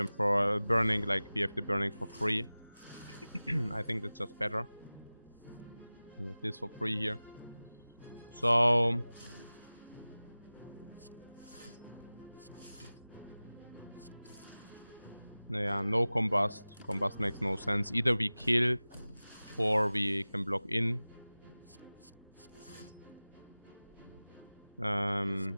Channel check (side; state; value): both; inverted; correlation -0.98